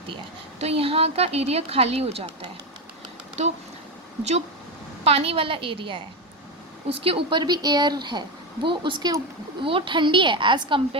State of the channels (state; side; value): normal; both; correlation 0.13